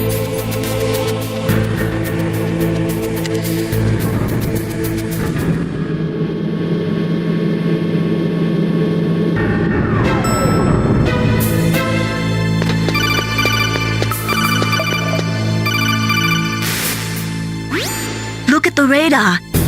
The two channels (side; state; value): both; identical; correlation 1.00